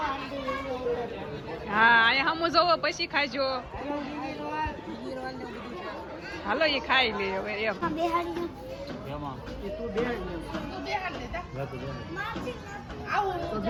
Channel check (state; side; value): identical; both; correlation 1.00